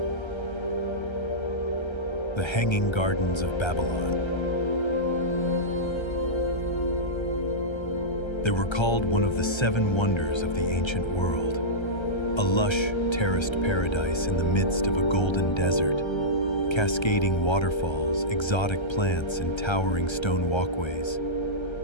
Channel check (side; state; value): right; late; 1.3 ms